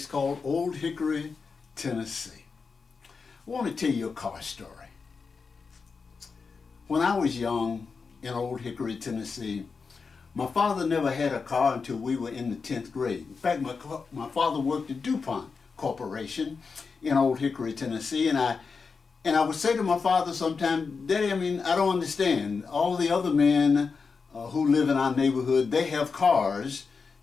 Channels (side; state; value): right; quieter; 5.0 dB